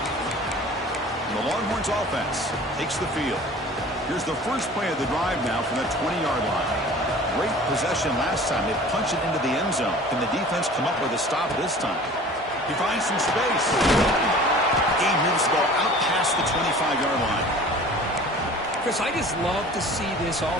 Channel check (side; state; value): both; normal; correlation 0.44